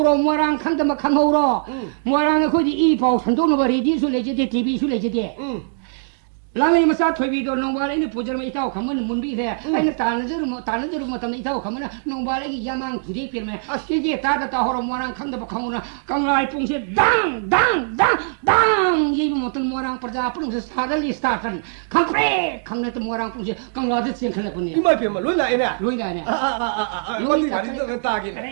ꯃꯣꯏꯔꯥꯡ ꯈꯪꯗꯕ ꯈꯪꯍꯧꯔꯣ ꯃꯣꯏꯔꯥꯡ ꯑꯩꯈꯣꯏꯗꯤ ꯏ ꯄꯥꯎ ꯁꯟꯗꯣꯛꯅꯕ ꯔꯦꯗꯤꯑꯣꯁꯨ ꯂꯩꯖꯗꯦ ꯇꯤꯚꯤꯁꯨ ꯂꯩꯖꯗꯦ ꯂꯥꯡꯂꯩ ꯃꯆꯥ ꯊꯣꯏꯕꯤꯗꯣ ꯅꯣꯡꯕꯥꯜ ꯑꯩꯅ ꯄꯨꯖꯔꯝꯕ ꯏꯇꯥꯎ ꯈꯝꯕꯅ ꯃꯨꯟꯕꯤꯈ꯭ꯔꯦ ꯑꯩꯅ ꯇꯥꯟꯅꯖꯔꯨꯕ ꯃꯇꯝꯗ ꯏꯇꯥꯎ ꯈꯝꯕꯅ ꯅꯣꯡꯕꯥꯜ ꯑꯩꯒꯤ ꯌꯥꯃꯥꯡ ꯊꯨꯗꯦꯛꯄꯤꯔꯝꯃꯦ ꯀꯦꯒꯦ ꯇꯥꯗ ꯇꯥꯍꯧꯔꯣ ꯃꯣꯏꯔꯥꯡ ꯈꯪꯗꯕ ꯈꯪꯍꯧꯔꯣ ꯀꯪꯂꯥ ꯄꯨꯡꯁꯦ ꯗꯥꯡ ꯌꯩꯕ ꯃꯇꯝ ꯃꯣꯏꯔꯥꯡ ꯄ꯭ꯔꯖꯥ ꯄꯨꯝꯅꯃꯛꯁꯦ ꯁꯥꯒꯠꯂꯤ ꯁ꯭ꯇꯥꯔꯠ ꯈꯪꯄ꯭ꯔꯦ ꯈꯪꯅꯠꯇ ꯃꯣꯏꯔꯥꯡ ꯄꯨꯡꯁꯦ ꯀꯪꯂꯥꯗ ꯆꯦꯟꯈꯠꯂꯛꯄꯅꯤ ꯏꯃꯥꯏꯄꯦꯝꯃ ꯂꯣꯏ ꯂꯥꯛꯑꯦꯅꯦ ꯂꯣꯏ ꯂꯥꯛꯑꯦꯅꯦ ꯇꯥꯒꯦ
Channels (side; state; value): left; silent; 65 dB below the other